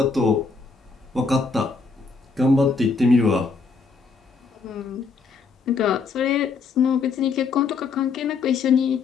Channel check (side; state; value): right; quieter; 4.7 dB